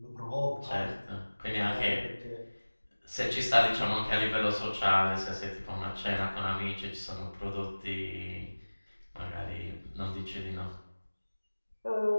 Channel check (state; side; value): inverted; both; correlation -1.00